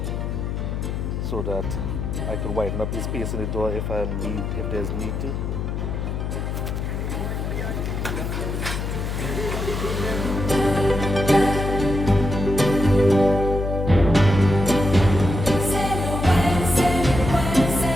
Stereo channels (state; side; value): noise; left; hum, 3 dB below the sound